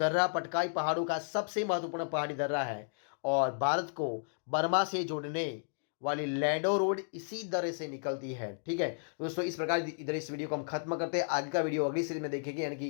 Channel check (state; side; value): silent; right; digital silence